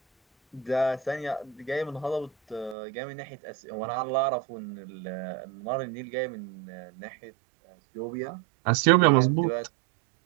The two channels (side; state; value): left; drops out; at 2.8 s